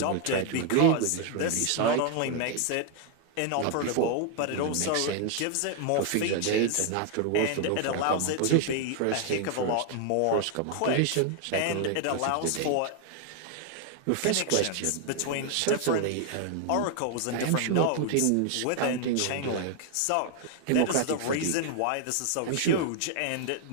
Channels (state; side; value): different; both; correlation 0.00